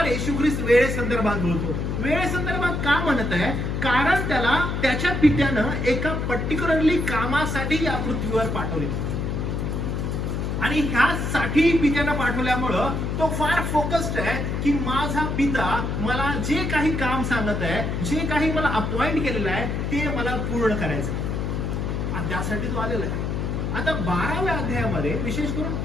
येशू ख्रिस्त वेळेसंदर्भात बोलतो. वेळेसंदर्भात का म्हणत आहे, कारण त्याला त्याच्या पित्यानं एका पर्टिक्युलरली कामासाठी या पृथ्वीवर पाठवले, आणि ह्यासाठी पित्यानं पाठवल्यामुळं तो फार फोकस्ड आहे की माझा पिता मला जे काही काम सांगत आहे, जे काही मला अपॉइंट केलेलं आहे ते मला पूर्ण करायचं, आणि त्यासाठी तो आलेला आहे. आता 12व्या अध्यायामध्ये विशेष करून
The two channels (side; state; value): left; noise; hum, 1 dB below the sound